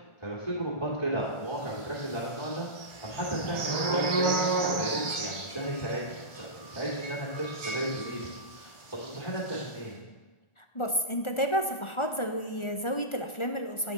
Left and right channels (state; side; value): late; right; 1.4 ms